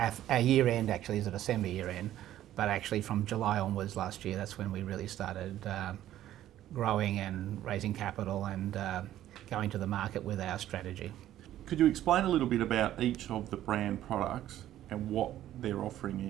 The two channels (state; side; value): quieter; left; 12.8 dB